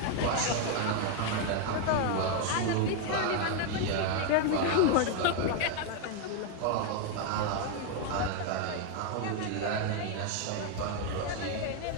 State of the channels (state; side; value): different; both; correlation 0.01